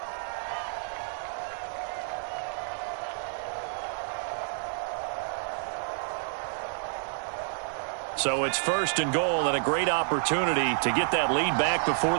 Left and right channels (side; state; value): left; silent; 58 dB below the other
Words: So it's 1st and goal and a great opportunity to get that lead back before